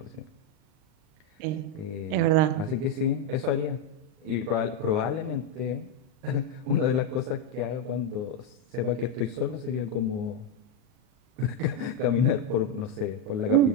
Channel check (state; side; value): late; left; 39 ms